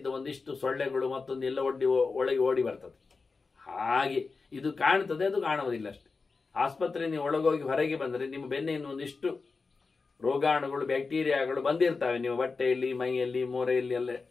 ಒಂದಿಷ್ಟು ಸೊಳ್ಳೆಗಳು ಮತ್ತೊಂದು ಎಲ್ಲ ಒಳಗೆ ಓಡಿ ಬರ್ತದೆ. ಹಾಗೆ ಇದು ಕಾಣ್ತದೆ, ಅದು ಕಾಣುವುದಿಲ್ಲ ಅಷ್ಟೆ. ಆಸ್ಪತ್ರೆ ನೀವು ಒಳಗೋಗಿ ಹೊರಗೆ ಬಂದರೆ ನಿಮ್ಮ ಬೆನ್ನೆಯನ್ನು ಒಂದಿಷ್ಟು ರೋಗಾಣುಗಳು, ಬ್ಯಾಕ್ಟೀರಿಯಾಗಳು ಬಂದಿರ್ತವೆ ನಿಮ್ಮ ಬಟ್ಟೆಯಲ್ಲಿ, ಮೈಯಲ್ಲಿ, ಮೋರೆಯಲ್ಲಿ ಎಲ್ಲ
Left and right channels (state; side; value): quieter; right; 4.4 dB